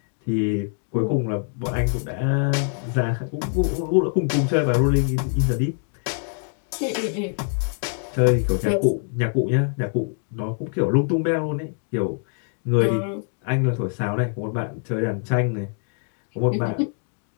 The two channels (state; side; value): silent; right; 56 dB below the other